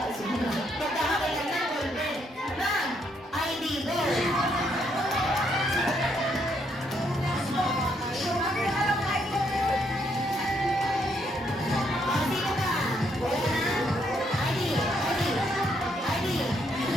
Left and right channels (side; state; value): both; normal; correlation 0.74